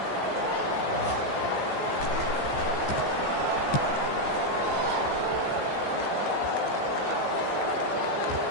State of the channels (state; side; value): late; right; 14 ms